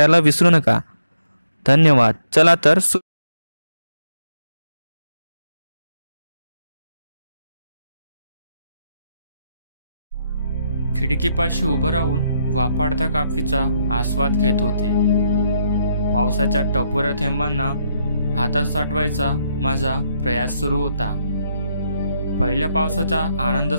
विसरू नका। धन्यवाद। चला तर खिडकीपाशी उभं राहून वापाडत्या काफीचा आस्वाद घेत होते। पावसाच्या टपोऱ्या थेंबांना हातात साठवायचा माझा प्रयास सुरू होता। पहिल्या पावसाचा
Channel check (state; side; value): inverted; both; correlation -0.77